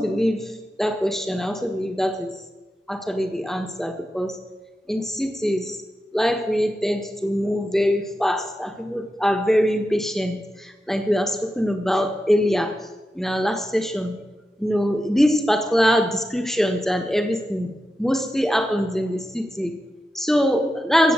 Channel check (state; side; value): normal; both; correlation 0.90